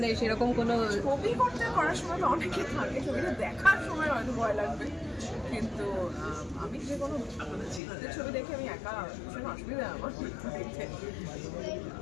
সেরকম কোনো ছবি করার সময় তো অনেকে থাকে, ছবিটা দেখার সময় হয়তো ভয় লাগবে, কিন্তু আমি যে কোনো ছবি দেখে আমি একা ভীষণ অসুবিধা আমার দেখতে।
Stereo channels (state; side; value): drops out; right; at 7.8 s